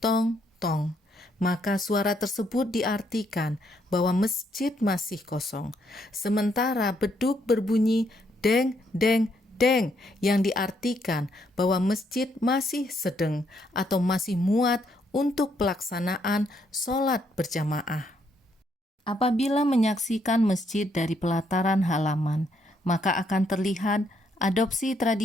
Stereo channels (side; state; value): both; normal; correlation 0.73